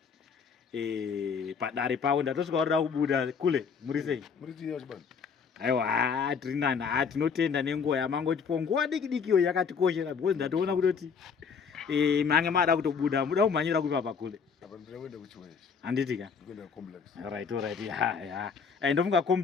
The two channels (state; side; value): quieter; right; 6.1 dB